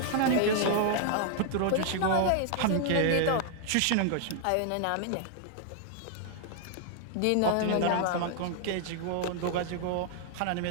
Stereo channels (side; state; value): both; different; correlation 0.00